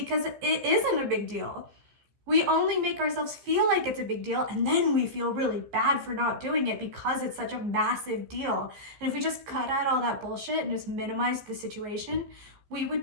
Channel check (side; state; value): left; late; 15 ms